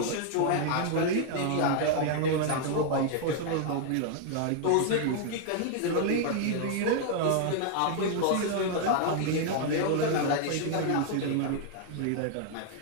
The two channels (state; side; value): different; both; correlation 0.00